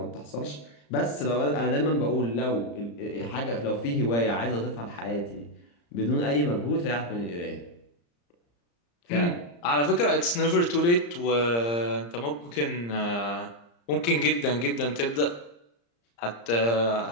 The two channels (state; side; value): late; right; 34 ms